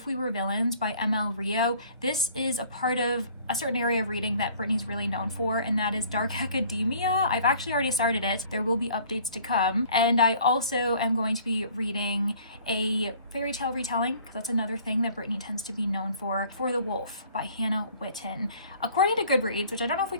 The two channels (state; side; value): inverted; both; correlation -0.53